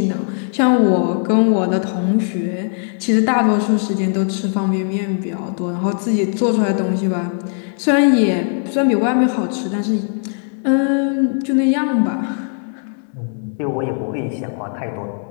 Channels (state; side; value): silent; right; 62 dB below the other